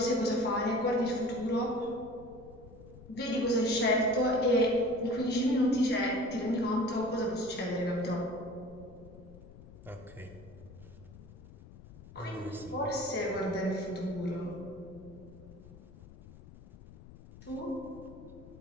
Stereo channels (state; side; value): noise; left; rumble, 19 dB below the sound